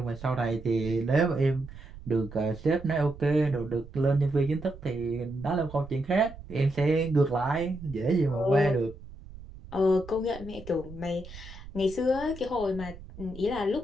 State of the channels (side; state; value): right; noise; rumble, 16 dB below the sound